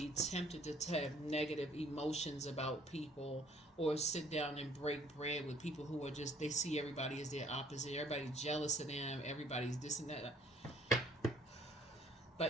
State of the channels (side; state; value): both; normal; correlation 0.59